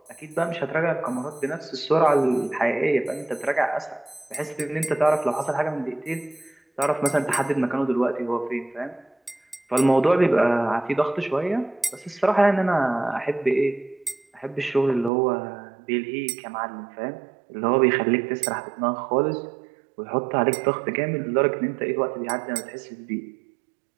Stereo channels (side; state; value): left; drops out; at 15.1 s